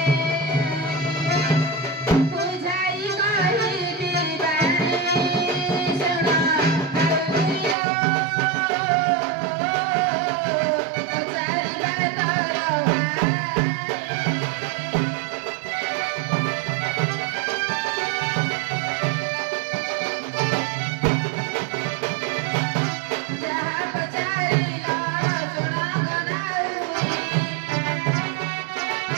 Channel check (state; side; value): drops out; left; at 7.8 s